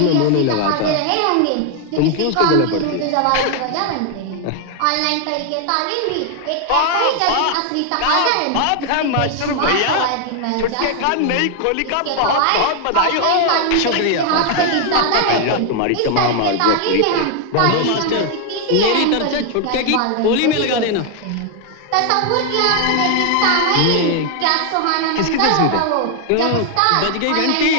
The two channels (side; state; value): both; different; correlation 0.00